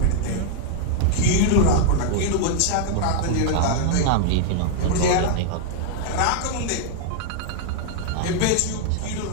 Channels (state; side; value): different; both; correlation 0.00